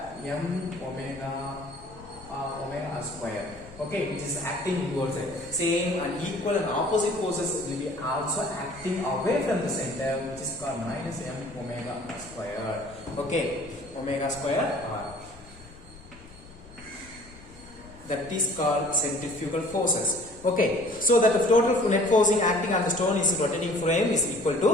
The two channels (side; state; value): left; noise; rumble, 21 dB below the sound